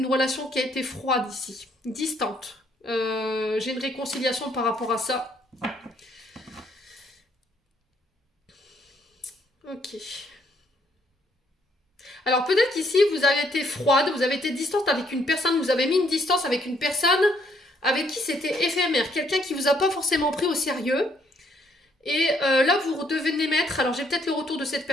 relation qui a été froide ici, distante. J'ai une réconciliation par rapport à ça. Ok. Alors peut-être qu'ici, vous avez été froide, vous avez été distante avec une personne, vous avez mis une distance avec une personne avec qui c'était éphémère, quelqu'un qui vous a pas forcément pris au sérieux. Et là, vous redevenez maître. Alors j'ai peut-être le retour de cette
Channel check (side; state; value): both; normal; correlation 0.69